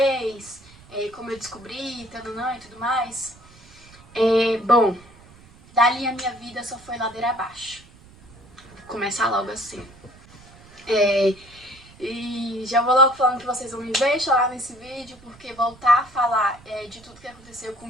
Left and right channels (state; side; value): noise; right; rumble, 24 dB below the sound